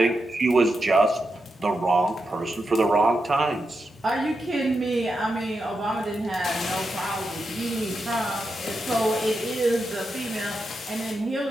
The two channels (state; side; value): normal; both; correlation 0.87